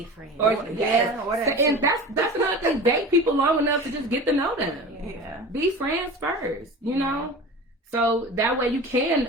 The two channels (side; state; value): both; normal; correlation 0.35